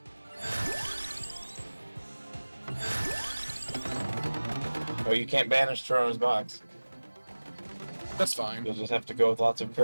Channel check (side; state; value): both; inverted; correlation -1.00